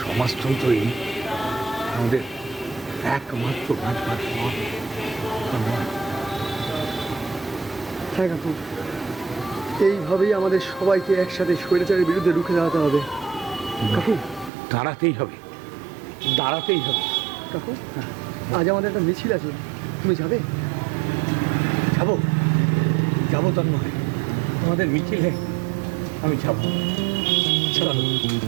সমাজতন্ত্রই আমাদের একমাত্র বাঁচবার পথ। হ্যাঁ কাকু, এইভাবেই আমাদের সবাইকে একসাথে স্বৈরাচারের বিরুদ্ধে রুখে দাঁড়াতে হবে। কাকু দাঁড়াতেই হবে, দাঁড়াতেই হবে। কাকু আজ আমাদের একটা মিছিল আছে, তুমি যাবে? যাবো যাবো তন্ময়, আমাদের মিছিলে আমি যাবো। চলো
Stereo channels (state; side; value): drops out; left; at 14.5 s